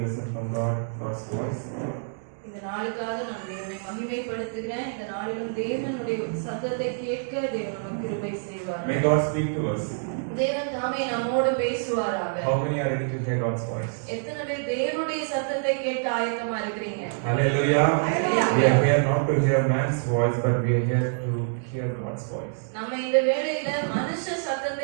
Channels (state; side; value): silent; left; digital silence